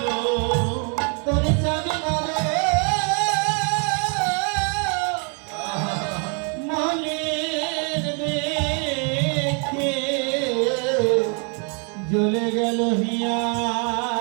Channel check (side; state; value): left; quieter; 38.0 dB